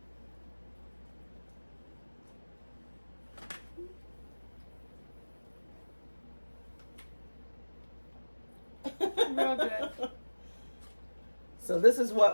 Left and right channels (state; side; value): inverted; both; correlation -1.00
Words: Real good. So this is